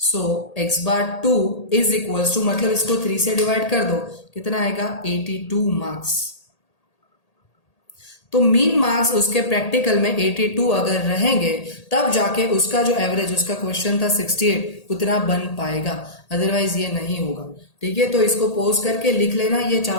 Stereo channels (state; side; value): late; right; 1.8 ms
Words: x bar 2 is equals to, मतलब इसको 3 से डिवाइड कर दो कितना आएगा 82 मार्क्स। तो मीन मार्क्स उसके प्रैक्टिकल में 82 अगर रहेंगे तब जाके उसका जो एवरेज, उसका क्वेश्चन था 68 उतना बन पाएगा, अदरवाइज ये नहीं होगा। ठीक है, तो इसको पोज करके लिख लेना ये